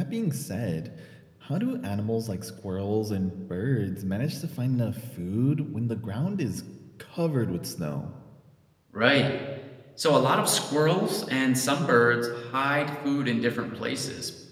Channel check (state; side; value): identical; both; correlation 1.00